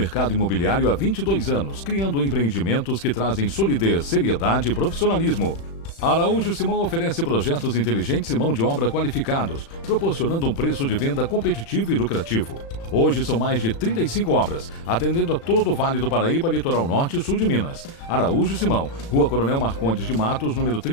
imobiliário há 22 anos, criando empreendimentos que trazem solidez, seriedade e profissionalismo. A Araújo Simão oferece projetos inteligentes e mão de obra qualificados, proporcionando um preço de venda competitivo e lucrativo. Hoje são mais de 35 obras, atendendo a todo o Vale do Paraíba, Litoral Norte e Sul de Minas. Araújo Simão, Rua Coronel Marcondes de Matos, número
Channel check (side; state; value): right; late; 36 ms